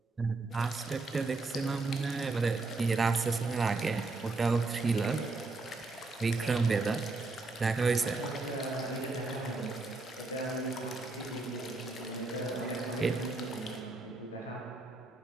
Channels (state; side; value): quieter; left; 3.5 dB